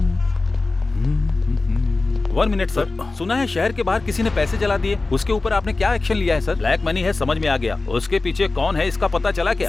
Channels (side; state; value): right; quieter; 3.4 dB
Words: वन मिनट सर, सुना है शहर के बाहर किसी ने पैसे जला दिए, उसके ऊपर आपने क्या एक्शन लिया है सर? ब्लैक मनी है, समझ में आ गया। उसके पीछे कौन है इसका पता चला क्या?